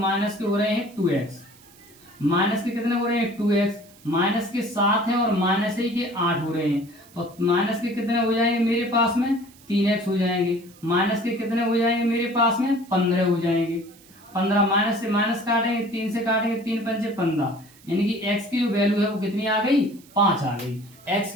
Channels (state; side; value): noise; right; hiss, 25 dB below the sound